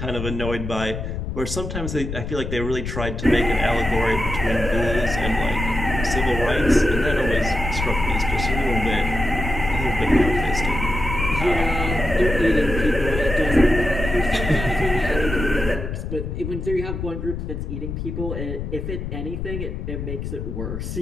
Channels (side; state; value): left; noise; rumble, 5 dB below the sound